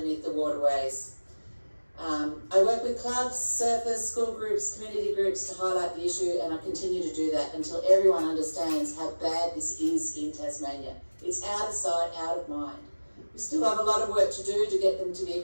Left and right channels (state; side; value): inverted; both; correlation -1.00